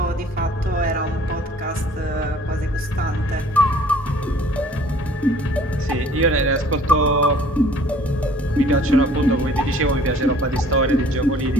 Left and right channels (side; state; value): both; normal; correlation 0.54